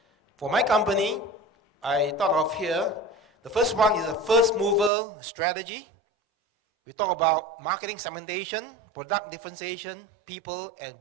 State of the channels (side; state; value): left; drops out; at 4.9 s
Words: For my company, I thought of here, the first one is a first mover strategy. We talk about marketing segmentation, product differentiation, people, and